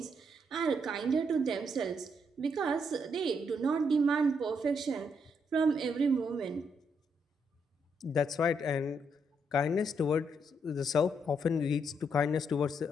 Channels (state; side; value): normal; both; correlation 0.76